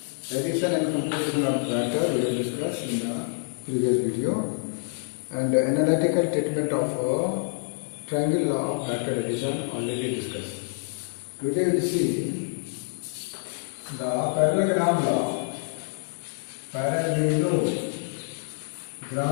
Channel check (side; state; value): right; silent; 60 dB below the other